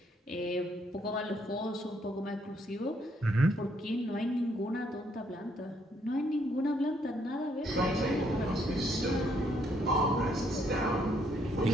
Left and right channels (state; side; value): normal; both; correlation 0.71